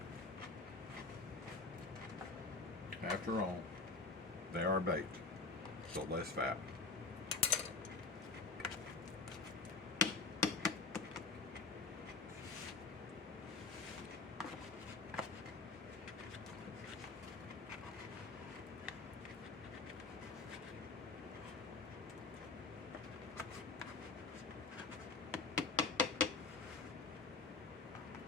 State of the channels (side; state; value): right; quieter; 4.2 dB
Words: After all, they are baked, so less fat.